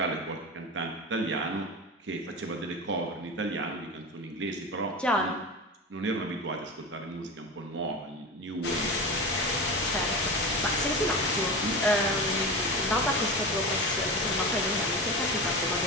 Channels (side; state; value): both; normal; correlation 0.26